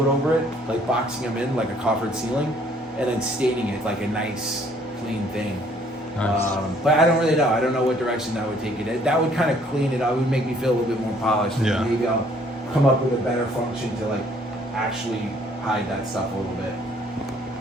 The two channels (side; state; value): both; normal; correlation 0.62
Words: over it, like boxing them in like a coffered ceiling, and then staining it like a nice, clean thing. Nice. But I don't really know. I don't know what direction that would take it. That would kind of clean it up. It would make me feel a little bit more polished. Yeah. And maybe I'll come up with a better function to like actually hide that stuff a little bit.